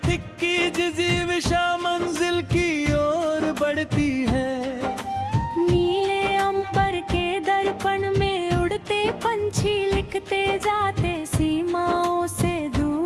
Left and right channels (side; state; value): both; identical; correlation 1.00